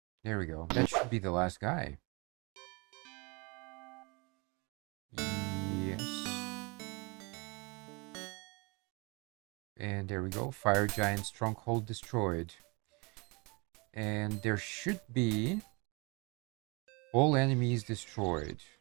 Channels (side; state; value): left; quieter; 28.5 dB